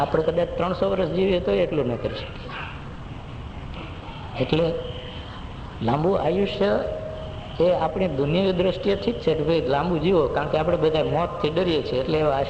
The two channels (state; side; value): identical; both; correlation 1.00